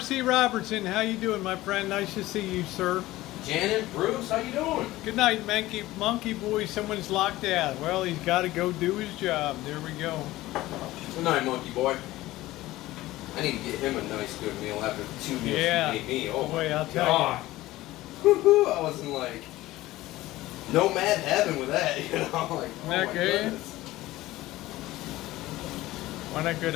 Robertson, how you doing, my friend? Nice to see you, sir. Janet, Bruce, how you doing? Good night, monkey boy. Someone's locked out. Well, he's got to go do his job. There we go. Good night, monkey boy. I need to get him a nice good meal after the 2 meals he made me. Oh boy, my I'll tell God. Woo-hoo, I was in like nomad heaven with that, you know? Like, oh my goodness. Why not good?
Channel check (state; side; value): quieter; right; 17.2 dB